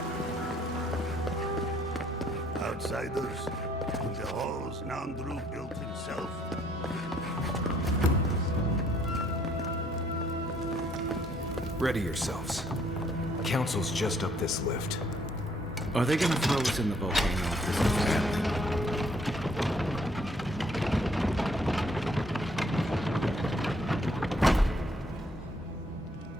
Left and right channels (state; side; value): normal; both; correlation 0.66